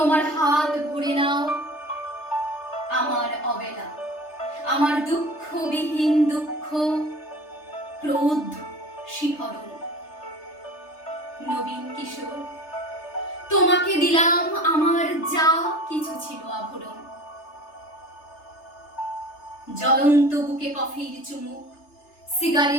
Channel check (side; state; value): right; late; 3.3 ms